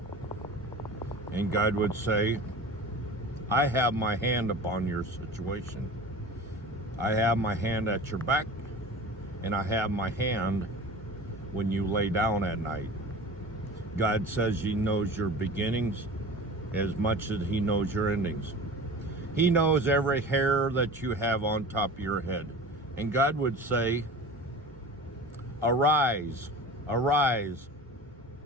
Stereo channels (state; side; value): normal; both; correlation 0.36